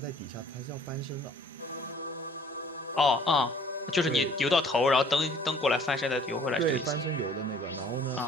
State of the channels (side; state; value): both; normal; correlation 0.54